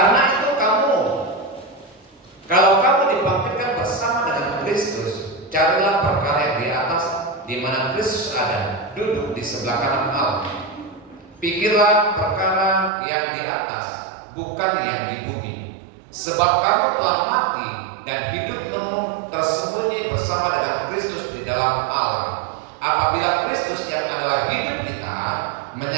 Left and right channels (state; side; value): drops out; left; at 12.9 s